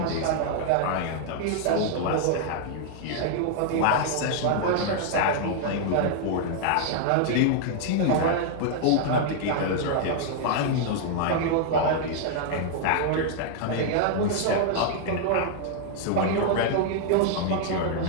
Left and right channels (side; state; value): both; different; correlation 0.00